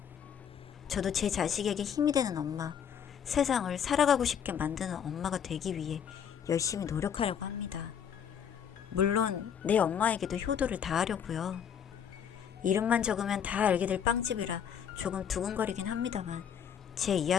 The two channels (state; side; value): quieter; right; 8.1 dB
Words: 저도 제 자식에게 힘이 되는 엄마, 세상을 살아가고 싶게 만드는 엄마가 되기 위해 열심히 노력하려고 합니다. 물론 내 엄마에게도 효도를 다하려고요. 이름만 적으면 다 알게 될 빵집이라 조금 두근거리긴 합니다만 제